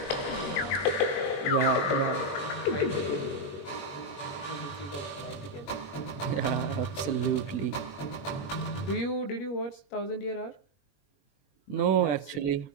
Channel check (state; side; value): late; right; 21 ms